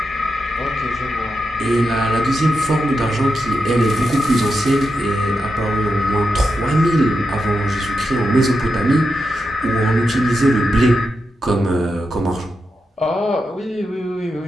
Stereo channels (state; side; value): normal; both; correlation 0.87